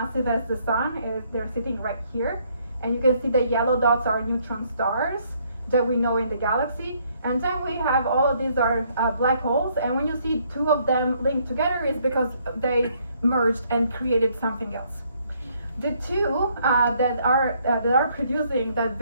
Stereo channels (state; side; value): inverted; both; correlation -0.68